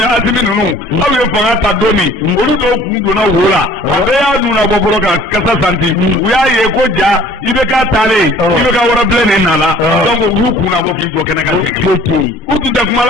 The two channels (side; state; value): both; normal; correlation 0.51